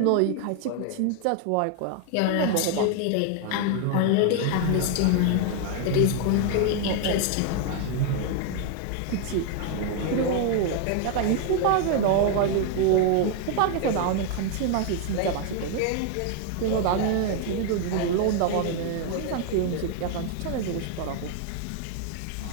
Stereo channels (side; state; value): both; different; correlation 0.00